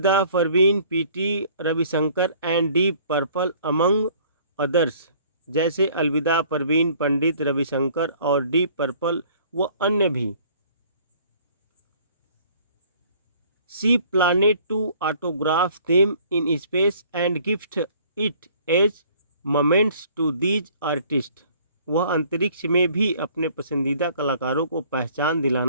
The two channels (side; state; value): both; inverted; correlation -0.55